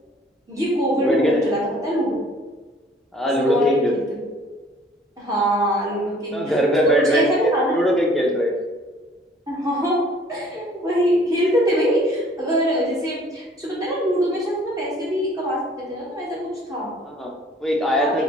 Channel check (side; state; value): both; normal; correlation 0.55